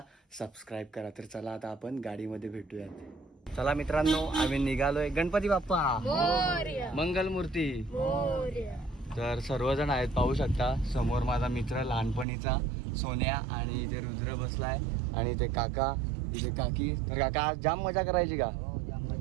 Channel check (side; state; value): left; drops out; at 12.2 s